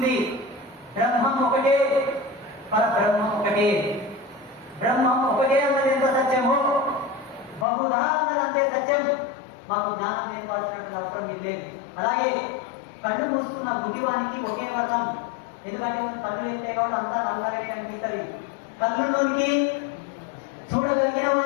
బ్రహ్మం ఒకటే, పరబ్రహ్మం ఒకటే. బ్రహ్మం ఒకటే అన్నది ఎంత సత్యమో బహుధా అన్నది అంతే సత్యం. మాకు జ్ఞానం నేర్పాల్సినటువంటి అవసరం మీరు లేదు. అలాగే కళ్ళు మూసుకున్న గుడ్డివానికి ఒకే వర్ణం. ఎందుకంటే కళ్ళు వెళ్తే కాబట్టి అంతా నల్లగా అనిపిస్తుంది. కళ్ళులోనికి చూడగలిగిన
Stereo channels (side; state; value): right; drops out; at 7.7 s